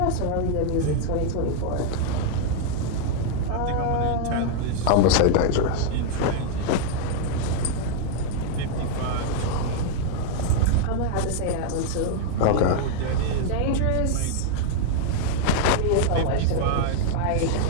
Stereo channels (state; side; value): different; both; correlation -0.01